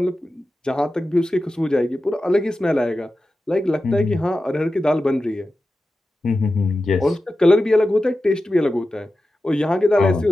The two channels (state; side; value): normal; both; correlation 0.93